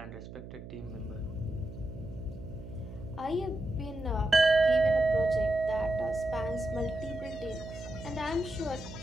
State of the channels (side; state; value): right; noise; hum, 13 dB below the sound